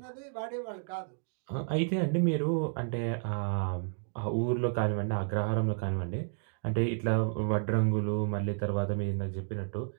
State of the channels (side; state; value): left; silent; digital silence